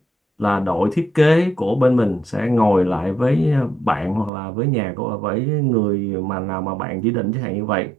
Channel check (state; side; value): drops out; left; at 4.3 s